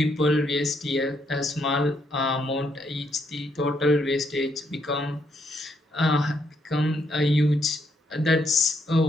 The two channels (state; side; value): normal; both; correlation 0.75